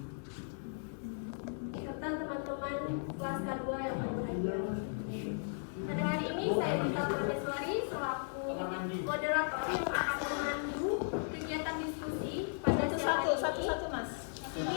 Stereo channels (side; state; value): right; silent; 54 dB below the other